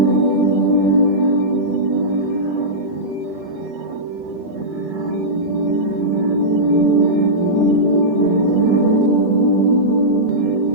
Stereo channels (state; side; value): normal; both; correlation -0.14